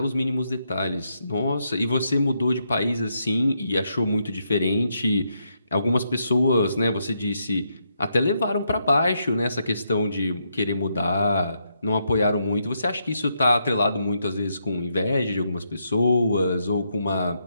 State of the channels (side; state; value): both; inverted; correlation -0.79